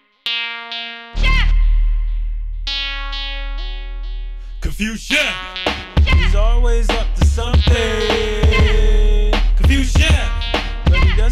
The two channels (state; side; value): identical; both; correlation 1.00